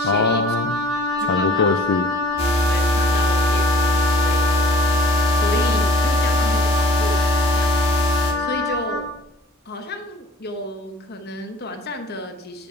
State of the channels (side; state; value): both; normal; correlation 0.50